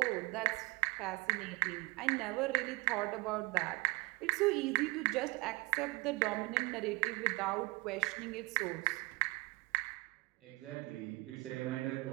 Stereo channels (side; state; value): left; quieter; 24.3 dB